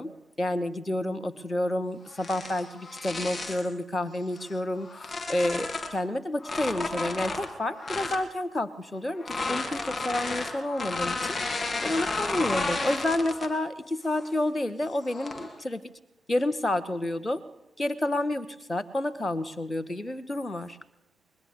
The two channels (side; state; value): both; normal; correlation 0.90